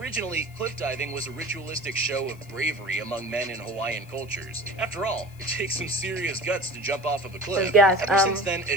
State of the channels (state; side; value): noise; left; hiss, 26 dB below the sound